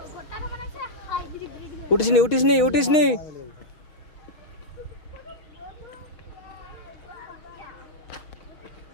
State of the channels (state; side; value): late; right; 6.4 ms